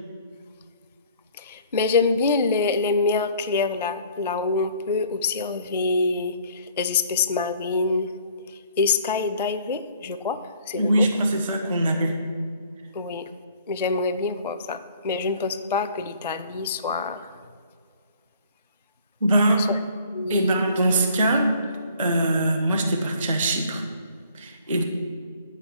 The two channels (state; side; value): inverted; both; correlation -0.56